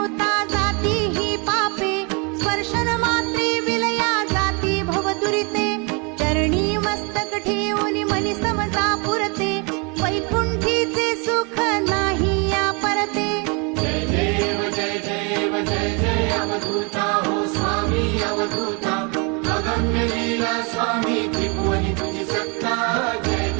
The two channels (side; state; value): left; quieter; 32.9 dB